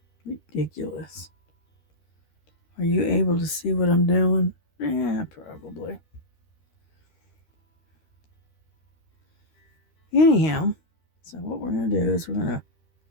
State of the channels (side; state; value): right; late; 13 ms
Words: Ridiculous. Are you able to see what I'm doing? Yeah, probably. Anyhow, so what we're going to do is we're going to